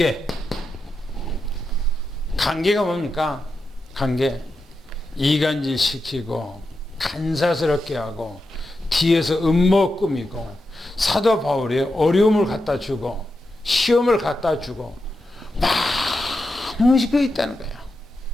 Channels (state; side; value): normal; both; correlation 0.88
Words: 관계가 뭡니까? 관계. 이간질 시키고 간사스럽게 하고 뒤에서 음모 꾸미고 사도 바울이 어려움을 갖다 주고 시험을 갖다 주고 많은 것이 그 있다는 거야.